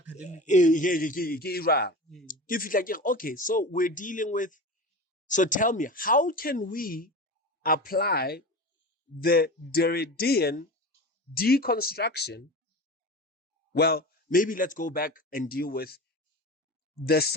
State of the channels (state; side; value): normal; both; correlation 0.30